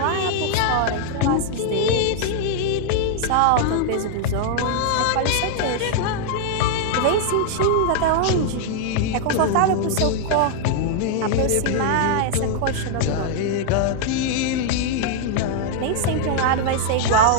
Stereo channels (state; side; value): different; both; correlation -0.01